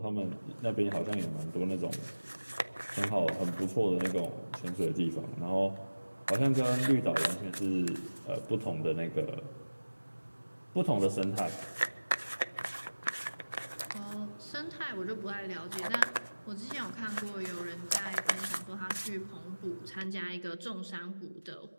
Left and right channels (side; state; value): both; inverted; correlation -1.00